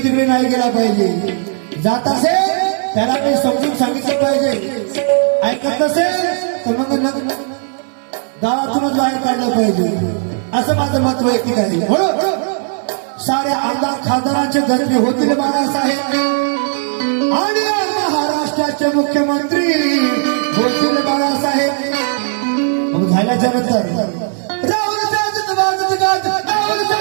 तिकडे नाही गेला पाहिजे. जात असेल त्याला मी समजून सांगितलं पाहिजे. ऐकत नसेल तर मग गावातूनच बाहेर काढलं पाहिजे. असं माझं मत वैयक्तिक आहे. म्हणून साऱ्या आमदार खासदारांचे गजबे होतील बाळासाहेब आणि महाराष्ट्राचे मुख्यमंत्री होतील बाळासाहेब. मग झाल्याच्या नंतर राहुल साजत वाजत गाजत राहुल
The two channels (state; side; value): silent; left; 60 dB below the other